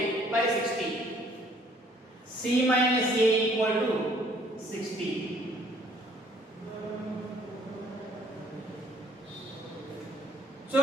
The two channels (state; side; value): normal; both; correlation 0.61